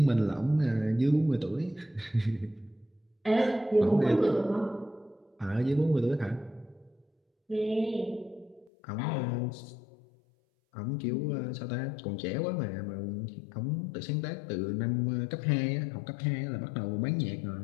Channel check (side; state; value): right; drops out; at 8.7 s